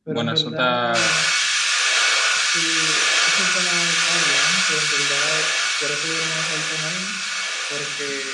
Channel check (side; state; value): both; identical; correlation 1.00